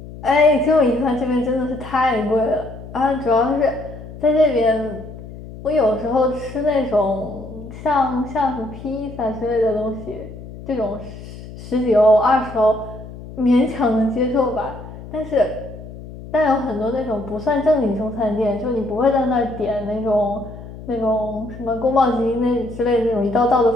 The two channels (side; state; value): left; noise; hum, 14 dB below the sound